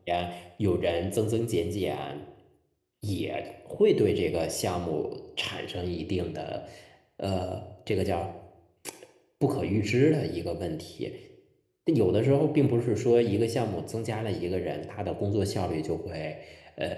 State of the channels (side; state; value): both; identical; correlation 1.00